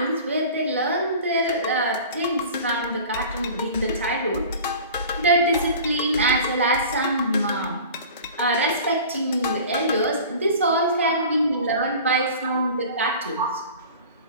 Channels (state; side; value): inverted; both; correlation -0.40